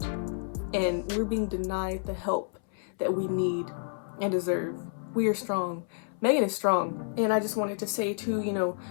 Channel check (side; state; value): right; silent; 58 dB below the other